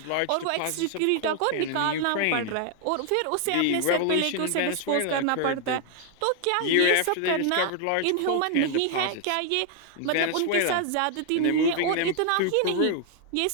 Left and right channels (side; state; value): both; different; correlation 0.00